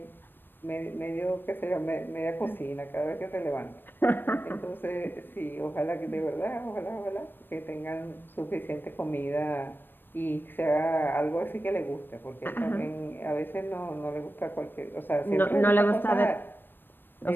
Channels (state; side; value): late; right; 0.095 ms